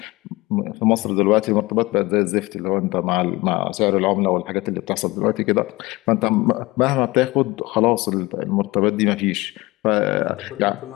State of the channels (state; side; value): quieter; right; 21.3 dB